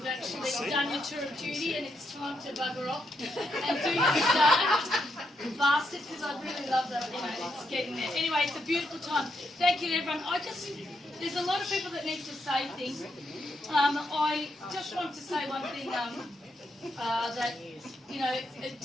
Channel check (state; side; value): normal; both; correlation 0.80